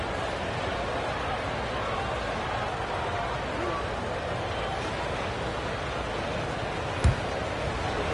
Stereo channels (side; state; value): both; identical; correlation 1.00